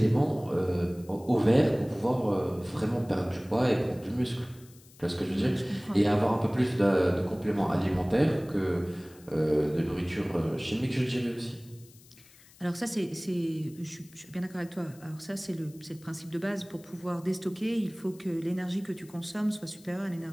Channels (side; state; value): left; noise; hiss, 25 dB below the sound